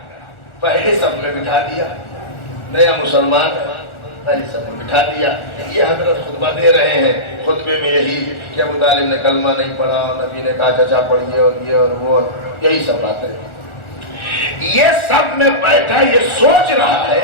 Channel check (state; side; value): late; right; 1.4 ms